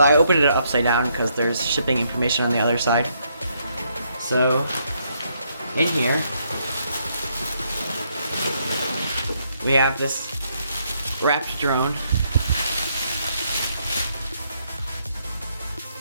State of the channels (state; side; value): inverted; both; correlation -0.74